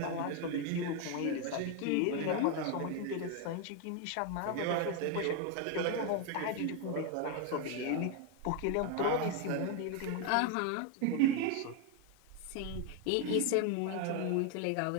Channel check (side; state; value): both; different; correlation 0.01